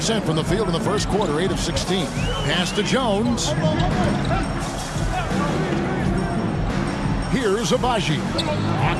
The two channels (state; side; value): identical; both; correlation 1.00